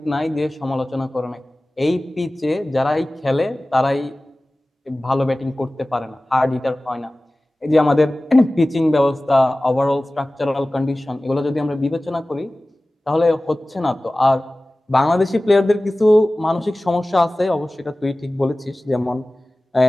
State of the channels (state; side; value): normal; both; correlation 0.97